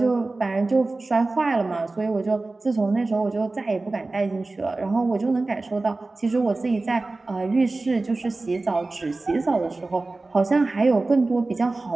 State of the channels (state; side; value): quieter; left; 3.3 dB